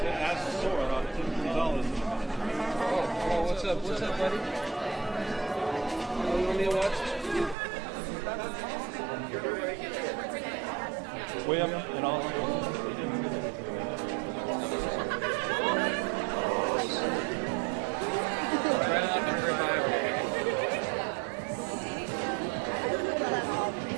Oh, what's up? What's up, buddy? You want me to watch? Way up and all.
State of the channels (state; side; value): drops out; left; at 7.6 s